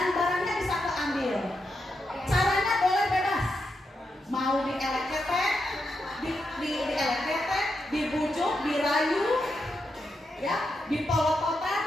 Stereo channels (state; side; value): normal; both; correlation 0.85